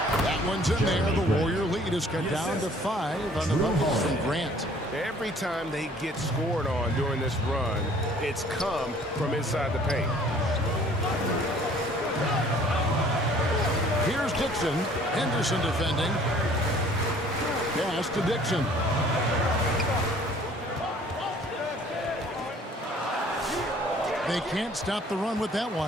That one's in there. The Warrior lead is cut down to 5 on the buckets from Grant. Every time they get scored on during this run, it's come from inside the paint. Here's Dixon. Henderson defending. Pass to Dixon. They can't stop the run with that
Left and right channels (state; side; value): normal; both; correlation 0.55